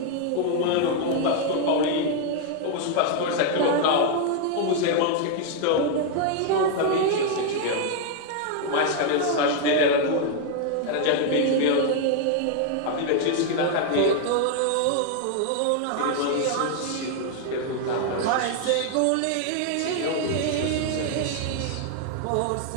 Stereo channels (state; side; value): different; both; correlation 0.00